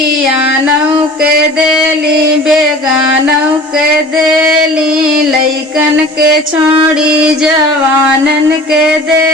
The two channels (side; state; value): both; normal; correlation 0.43